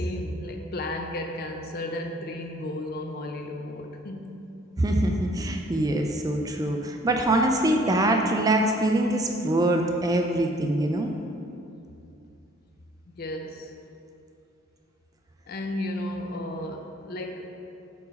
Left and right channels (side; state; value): both; normal; correlation 0.58